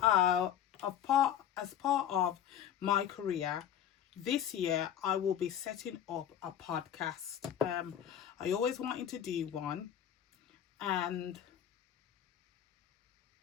of my career, this year I will be setting up a podcast. I always wanted to do one, and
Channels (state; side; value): quieter; right; 9.8 dB